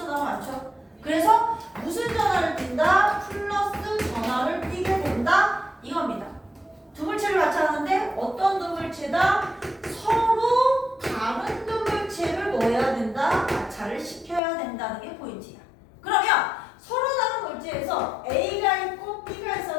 많죠. 그래서 무슨 전하를 띈다? 플러스 전하를 띄게 된다 이겁니다. 두 물체를 마찰하는데 어떤 두 물체다? 서로 다른 두 물체를 뭐 해야 된다? 마찰을 시켜야 된다는 게 포인트야. 그러면 서로 다른 물체에서 A가 있고 B가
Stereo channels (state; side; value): drops out; right; at 14.4 s